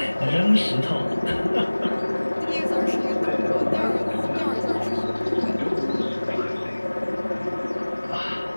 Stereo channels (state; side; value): inverted; both; correlation -1.00